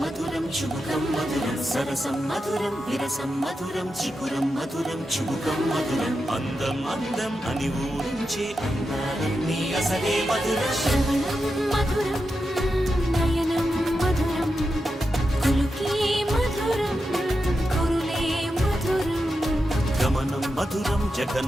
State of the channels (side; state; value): both; normal; correlation 0.88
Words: మధురం చుబుకం మధురం సరసం మధురం విరసం మధురం చికురం మధురం చుబుకం మధురం అందం అందం అని ఊరించే అందాలన్నీ అసలే మధురం శ్రవణం మధురం నయనం మధురం కులుకే మధురం కురులే మధురం గమనం మధురం